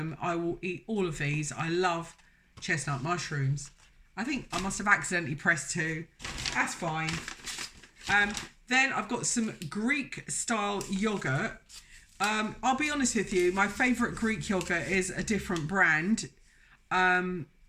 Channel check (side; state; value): both; identical; correlation 1.00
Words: I will eat all of these. I love chestnut mushrooms. I think I must have accidentally pressed 2. That's fine. Then I've got some Greek style yogurt. I'll be honest with you, my favourite Greek yogurt is a different brand,